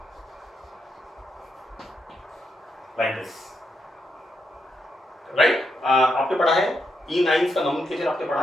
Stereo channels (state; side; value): normal; both; correlation 0.81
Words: like this, right? आपने पढ़ा है इन आइंस का नोमेनक्लेचर आपने पढ़ा